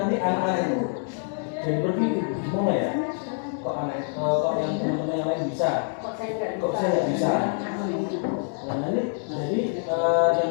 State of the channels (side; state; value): right; silent; 57 dB below the other